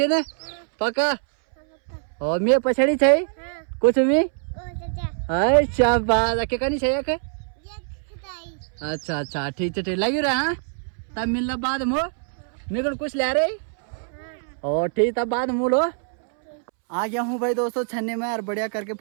ने? पक्का? और मैं पछड़ी छे कुछ भी? अच्छा बात के कनी छे के? अच्छा अच्छा ठीक है, ठीक लगी रहा। हाँ तब मिलना बाद में मेरे को कुछ ले रही और ठीक, तब बाद में लो। आ गया हूँ भाई दोस्तों छन्ने में, और बढ़िया करके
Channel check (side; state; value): left; silent; 63 dB below the other